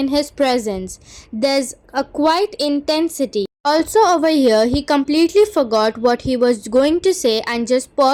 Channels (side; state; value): both; identical; correlation 1.00